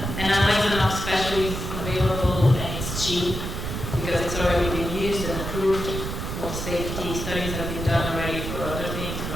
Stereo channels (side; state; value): right; noise; rumble, 5 dB below the sound